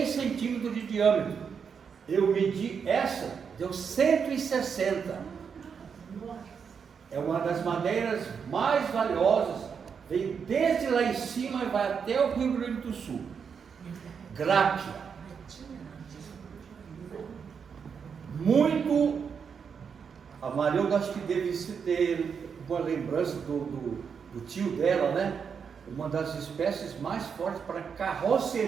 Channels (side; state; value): left; quieter; 6.5 dB